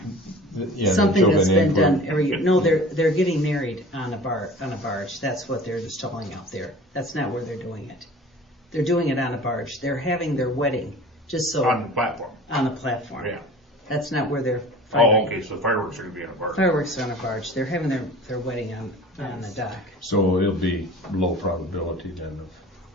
yeah, something they're that's building been in done every year. No, they're getting married on a barge. That's what they're installing out there. That's not where they're doing it. They're doing it on a barge. They're having their wedding, just so, On the platform. on a platform. Yeah. That's not where they're Oh, firing. okay, so fireworks are gonna be on a barge. Fireworks are on a barge. They're having their wedding on the dock. So it'll be low probability then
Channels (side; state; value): both; normal; correlation 0.42